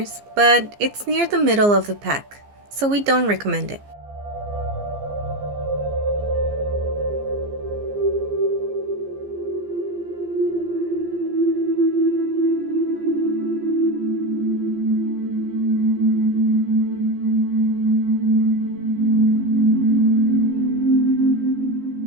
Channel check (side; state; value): left; late; 15 ms